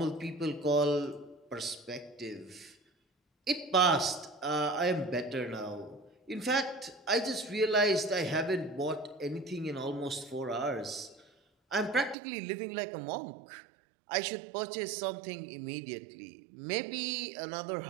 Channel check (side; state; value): left; drops out; at 12.2 s